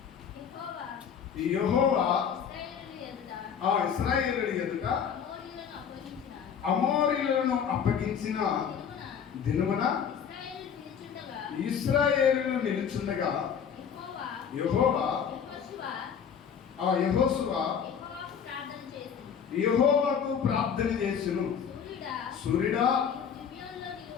యెహోవా ఇశ్రాయేలు ఎదుట అమోరీయులను అప్పగించిన దినమున ఇశ్రాయేలు నిలుచుండగా యెహోవా యెహోషువ యెహోవాకు ప్రార్థన చేసెను. సూర్యుడా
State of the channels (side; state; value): right; quieter; 7.5 dB